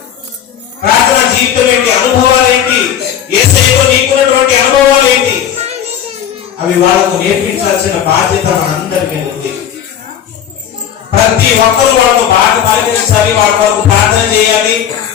ప్రార్థన జీవితం ఏంటి, అనుభవాలు ఏంటి, యేసయ్యలో నీకున్నటువంటి అనుభవాలు ఏంటి, అవి వాళ్ళకు నేర్పించాల్సిన బాధ్యత మనందరి మీద ఉంది. ప్రతి ఒక్కరు వాళ్ళకు బాగా పాటించాలి, వాళ్ళ వరకు ప్రార్థన చేయాలి.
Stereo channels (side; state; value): right; quieter; 9.6 dB